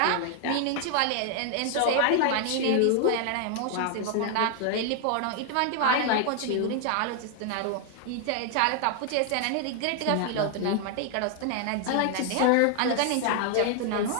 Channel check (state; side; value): different; both; correlation 0.00